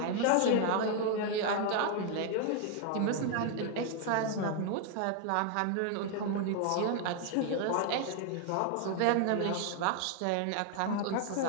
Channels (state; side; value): different; both; correlation 0.00